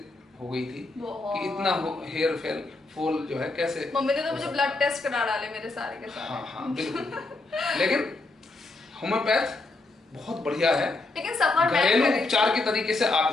हो गई थी कि इतना हेयर फॉल जो है कैसे। मम्मी ने तो मुझे ब्लड टेस्ट करा डाले मेरे सारे के सारे। हाँ हाँ बिल्कुल। लेकिन होम्योपैथ बहुत बढ़िया है, लेकिन सफर घरेलू उपचार के तरीके से आप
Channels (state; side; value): quieter; right; 3.2 dB